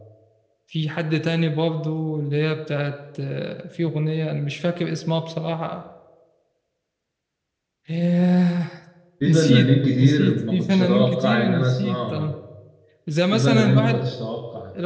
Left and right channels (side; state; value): both; identical; correlation 1.00